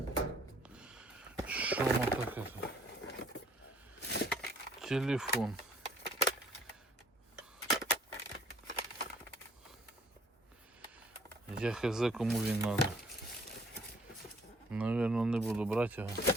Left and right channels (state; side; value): normal; both; correlation 0.59